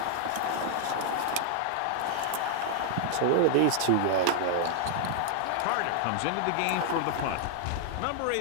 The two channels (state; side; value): different; both; correlation 0.00